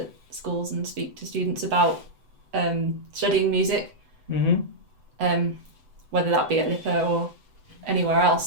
schools and speak to students about studying music, whether that be at LIPA or anywhere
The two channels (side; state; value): left; late; 7.9 ms